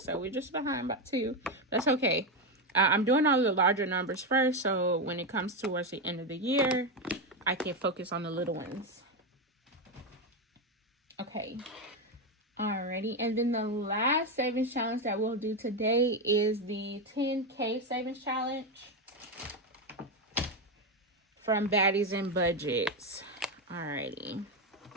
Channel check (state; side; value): normal; both; correlation 0.10